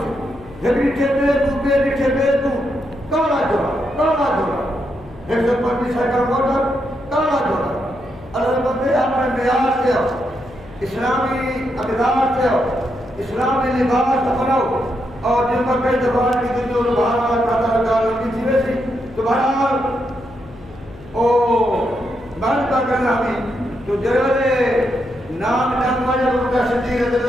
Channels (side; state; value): left; noise; hum, 20 dB below the sound